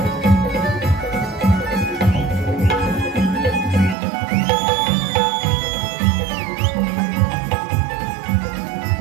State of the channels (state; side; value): drops out; left; at 4.0 s